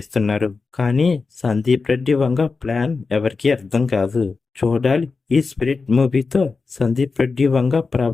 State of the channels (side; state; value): right; quieter; 4.4 dB